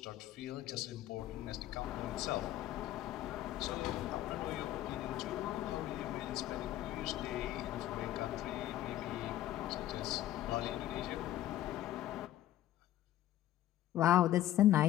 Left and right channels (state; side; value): quieter; right; 13.5 dB